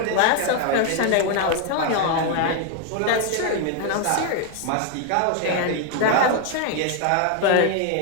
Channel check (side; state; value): both; different; correlation 0.00